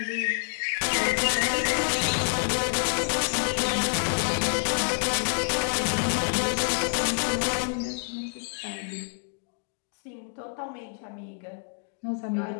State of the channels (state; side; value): quieter; right; 37.9 dB